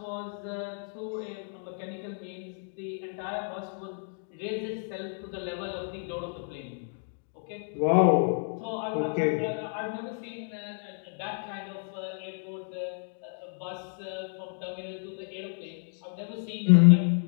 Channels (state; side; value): silent; right; 57 dB below the other